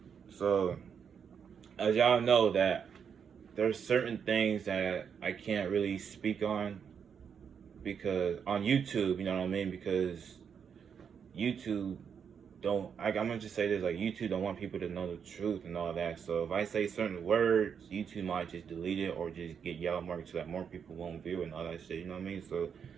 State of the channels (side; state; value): left; quieter; 7.2 dB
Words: So, as y'all know that there's certain things that I can't really speak on because on YouTube, you know what I mean? Because YouTube I'm gonna just say this, like YouTube don't want people to know the truth and all that. So if I say certain words, YouTube might just delete it or just get yellow marked so that more people won't view it and all that shit, you know what I mean? So